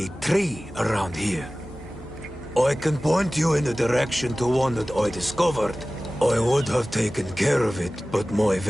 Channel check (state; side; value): normal; both; correlation 0.97